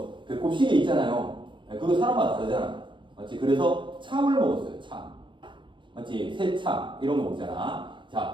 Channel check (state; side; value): late; left; 0.23 ms